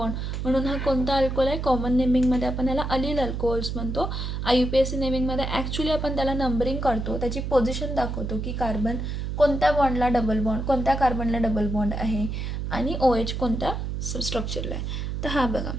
म्हणून हा कोणता अल्कोहोल आहे? कॉमन नेमिंगमध्ये आपण ह्याला अलील अल्कोहोल्स म्हणतो. IUPAC नेमिंगमध्ये ॲक्च्युली आपण त्याला नंबरिंग करतो, त्याची पोझिशन दाखवतो की कार्बन कोणत्या बॉन्डला डबल बॉन्ड, कोणत्या कार्बनला डबल बॉन्ड आहे आणि OH कोणत्या स्ट्रक्चरला आहे. तर हा बघा,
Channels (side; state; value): right; noise; hum, 3 dB below the sound